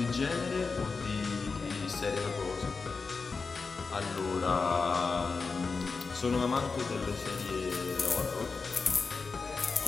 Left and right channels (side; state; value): right; quieter; 4.5 dB